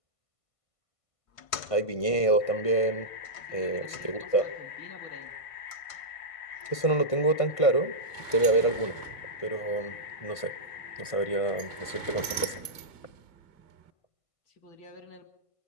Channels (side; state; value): right; late; 1.5 ms